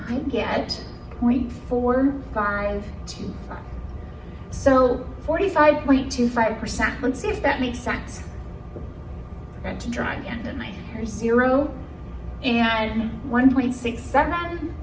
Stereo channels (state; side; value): identical; both; correlation 1.00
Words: I get 0.4525. So 45.25%, let's see if that makes sense. Forgot to draw again, didn't I? Here's 0 and 1.67.